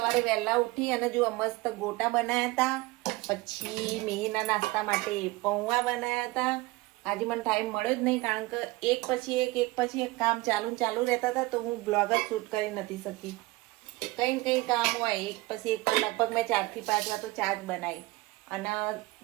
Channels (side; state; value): left; quieter; 21.2 dB